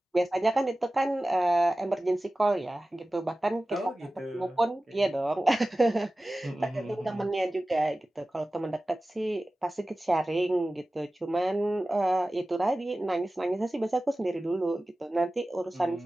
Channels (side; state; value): both; normal; correlation 0.96